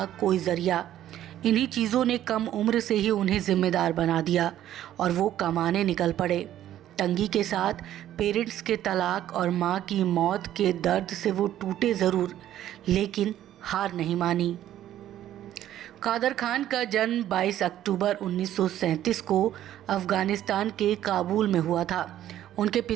कोई ज़रिया। इन्हीं चीज़ों ने कम उम्र से ही उन्हें ज़िम्मेदार बना दिया और वो कमाने निकल पड़े। तंगी के साथ पेरेंट्स के तलाक और माँ की मौत के दर्द से वो टूटे ज़रूर, लेकिन हार नहीं मानी। कादर खान का जन्म 22 अक्टूबर 1937 को अफ़गानिस्तान के काबुल में हुआ था। उनके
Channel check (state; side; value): quieter; left; 12.2 dB